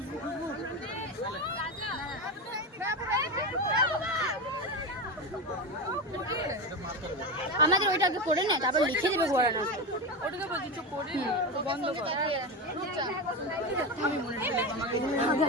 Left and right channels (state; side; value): normal; both; correlation 0.17